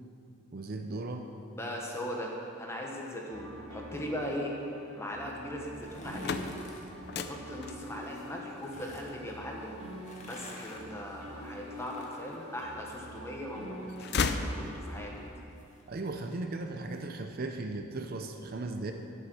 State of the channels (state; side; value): normal; both; correlation 0.44